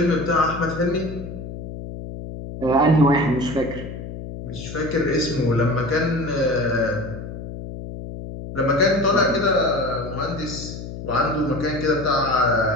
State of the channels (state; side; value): noise; left; hum, 10 dB below the sound